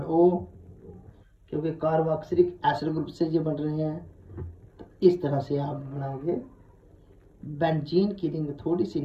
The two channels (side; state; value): both; identical; correlation 1.00